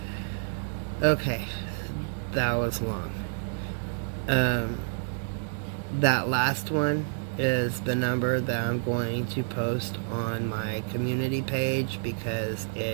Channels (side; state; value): left; silent; digital silence